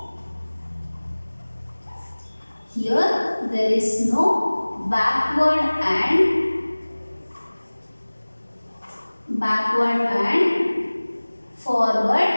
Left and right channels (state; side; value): inverted; both; correlation -1.00